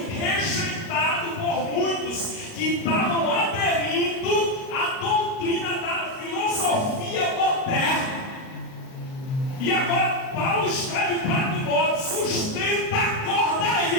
rejeitado por muitos que estavam aderindo à doutrina da filosofia moderna. E agora Paulo escreve para Timóteo: sustenta a corda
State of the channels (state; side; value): late; right; 38 ms